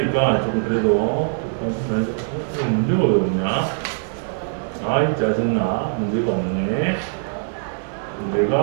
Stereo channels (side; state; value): left; silent; digital silence